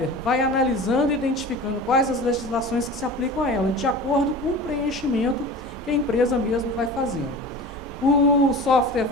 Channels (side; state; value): both; normal; correlation 0.35